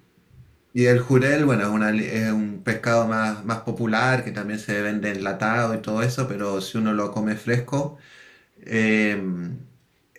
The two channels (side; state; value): both; identical; correlation 1.00